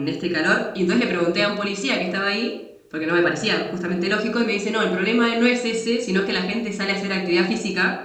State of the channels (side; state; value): both; identical; correlation 1.00